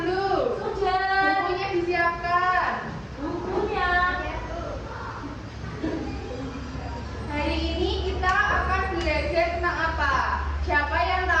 Sudah. Bukunya disiapkan. Bukunya. Hari ini kita akan belajar tentang apa? Siapa yang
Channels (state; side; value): identical; both; correlation 1.00